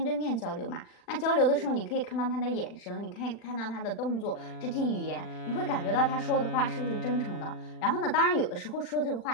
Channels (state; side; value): late; right; 40 ms